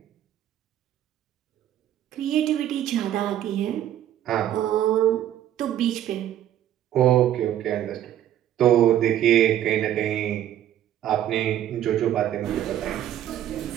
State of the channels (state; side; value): quieter; left; 11.6 dB